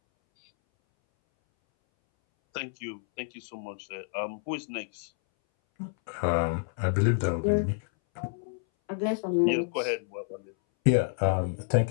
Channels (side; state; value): right; silent; 59 dB below the other